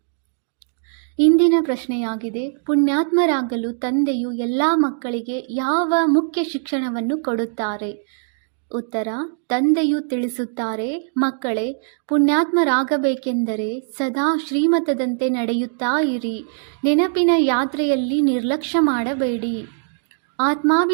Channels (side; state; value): left; silent; digital silence